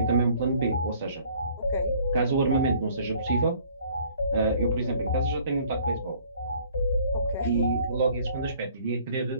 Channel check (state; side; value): inverted; both; correlation -0.57